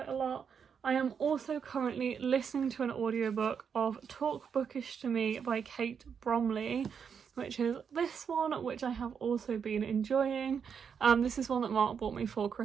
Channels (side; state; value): left; quieter; 6.9 dB